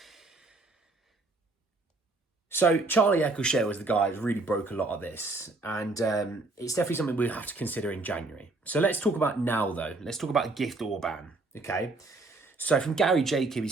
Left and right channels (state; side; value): quieter; left; 3.2 dB